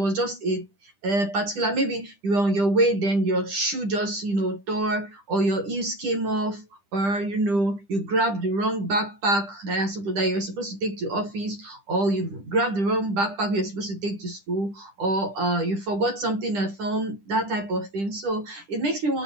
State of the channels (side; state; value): left; late; 10 ms